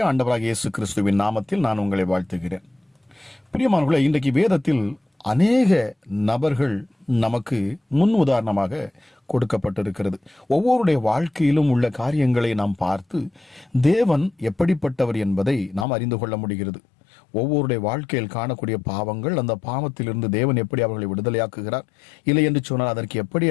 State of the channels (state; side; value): drops out; right; at 15.9 s